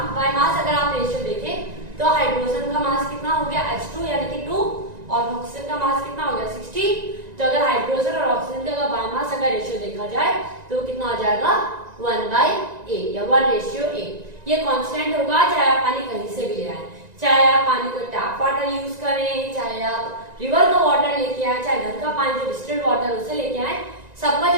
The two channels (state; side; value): late; left; 1.9 ms